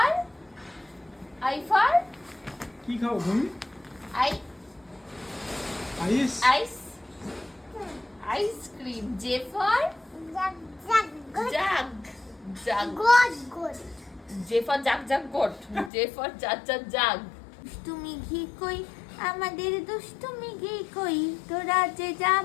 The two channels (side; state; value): right; drops out; at 15.9 s